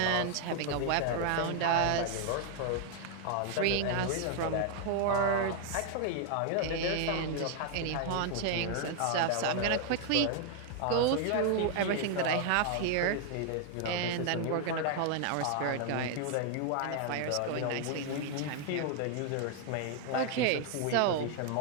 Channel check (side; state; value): both; different; correlation 0.00